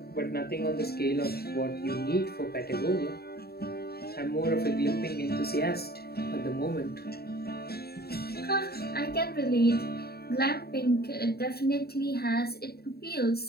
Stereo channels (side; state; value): right; late; 0.46 ms